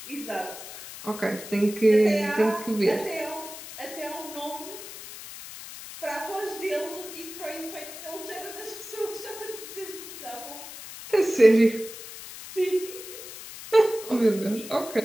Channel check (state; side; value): noise; left; hiss, 12 dB below the sound